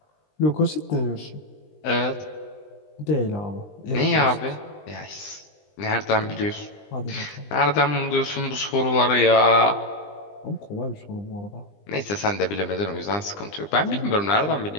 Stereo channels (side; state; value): right; late; 20 ms